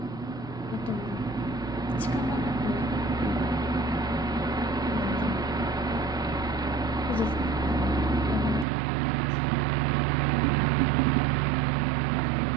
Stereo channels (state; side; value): drops out; left; at 8.7 s